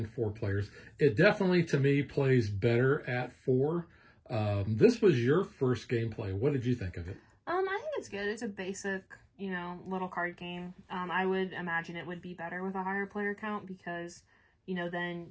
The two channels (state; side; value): identical; both; correlation 1.00